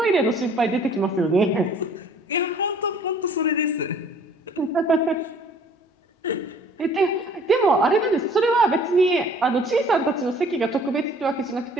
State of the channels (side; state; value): both; normal; correlation 0.54